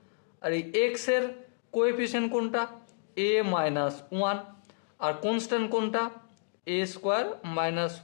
আর এই এক্স এর কোএফিসিয়েন্ট কোনটা, a -1, আর কনস্ট্যান্ট কোনটা, a স্কোয়ার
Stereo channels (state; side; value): silent; right; digital silence